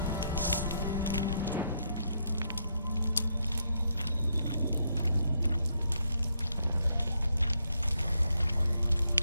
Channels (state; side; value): inverted; both; correlation -0.77